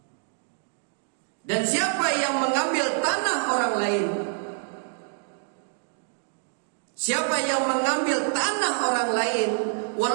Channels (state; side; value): silent; left; 61 dB below the other